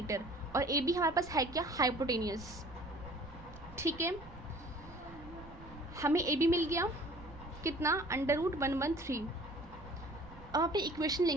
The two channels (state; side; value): noise; right; rumble, 17 dB below the sound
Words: और AB हमारे पास है क्या, हाइपोटेनियस। ठीक है, हमें AB मिल गया कितना, अंडर रूट 113। अब अपनी इक्वेशन